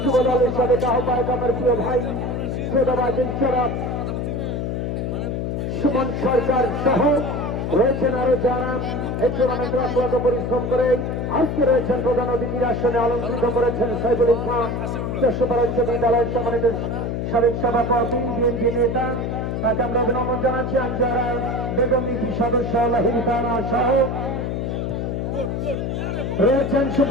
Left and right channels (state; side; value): noise; left; hum, 2 dB below the sound